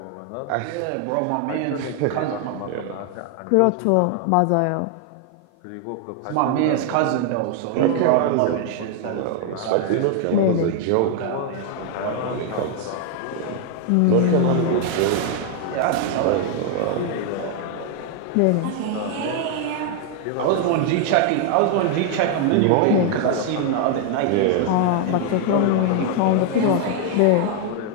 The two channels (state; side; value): different; both; correlation 0.00